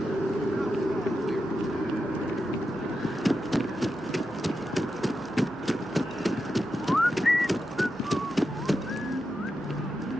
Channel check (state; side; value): noise; right; hum, 26 dB below the sound